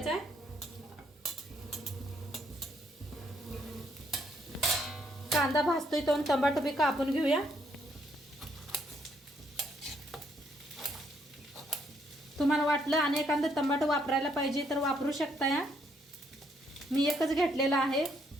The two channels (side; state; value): both; normal; correlation 0.71